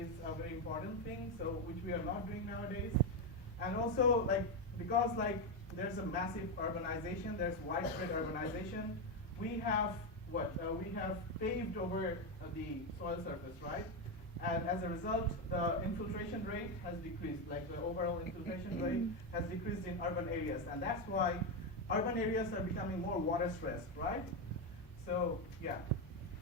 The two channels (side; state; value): both; normal; correlation 0.08